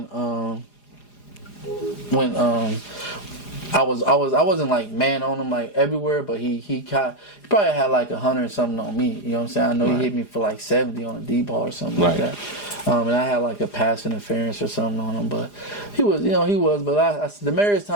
I wasn't like man on him like everywhere, but he probably had like 100 and something on me. You know what I'm saying? I know he hit me for like 70 on a D ball or something like that. And I had like a pass interference or something on him, but he was. But Demaryius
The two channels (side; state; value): right; late; 4.9 ms